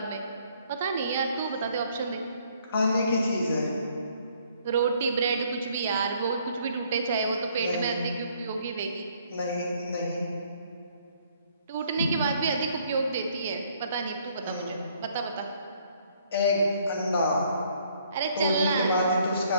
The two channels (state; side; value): inverted; both; correlation -0.64